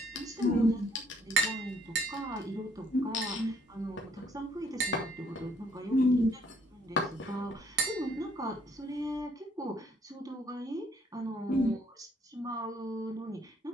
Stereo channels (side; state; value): both; normal; correlation 0.64